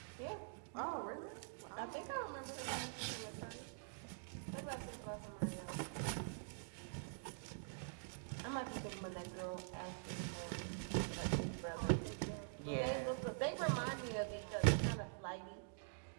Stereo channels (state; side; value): silent; left; digital silence